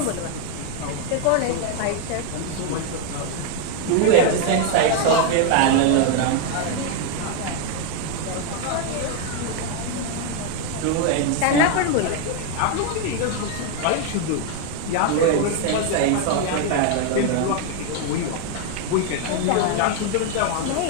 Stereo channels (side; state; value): both; different; correlation 0.01